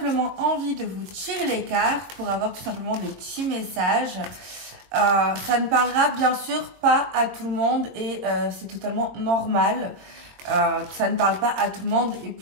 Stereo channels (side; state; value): left; late; 22 ms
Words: envie de vous tirer les cartes pour avoir tout simplement des petits messages. Ça ne parlera bien sûr pas à tout le monde et c'est totalement normal. Ça ne parle pas à tout le monde et